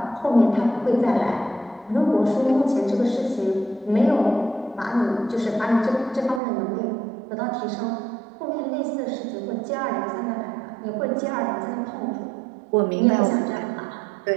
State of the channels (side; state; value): left; drops out; at 6.4 s